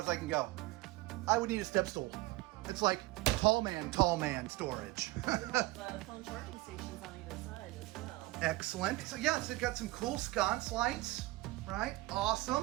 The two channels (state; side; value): quieter; left; 19.9 dB